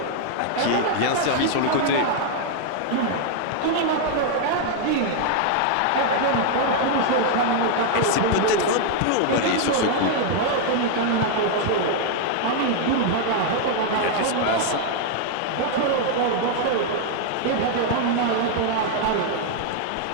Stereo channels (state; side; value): different; both; correlation 0.00